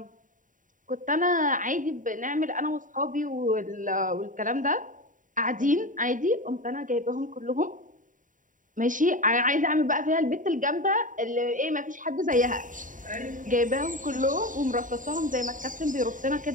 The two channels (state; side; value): late; left; 0.38 ms